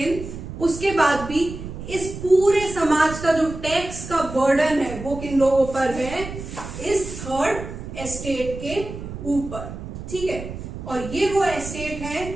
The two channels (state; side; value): noise; right; rumble, 10 dB below the sound